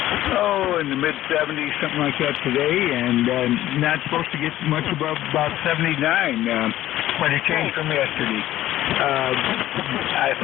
in the mid-70s, something like that today, and not supposed to get much above about 79. Quite a change from yesterday. I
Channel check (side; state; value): right; quieter; 14.2 dB